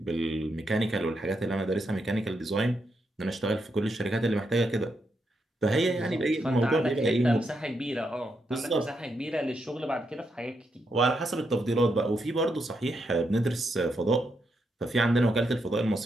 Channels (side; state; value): both; normal; correlation 0.81